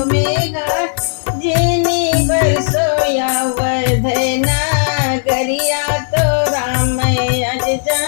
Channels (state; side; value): silent; right; 64 dB below the other